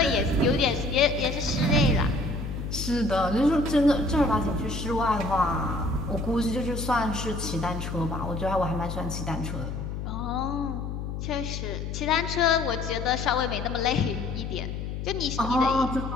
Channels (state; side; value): noise; left; hum, 5 dB below the sound